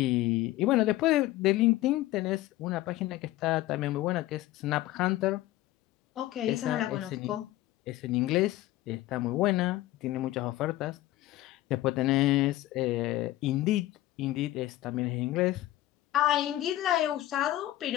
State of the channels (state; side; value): quieter; right; 15.9 dB